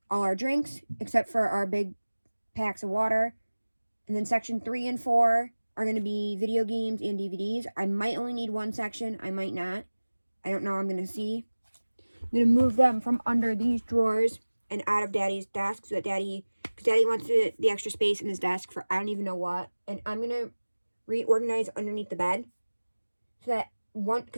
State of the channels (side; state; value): both; inverted; correlation -1.00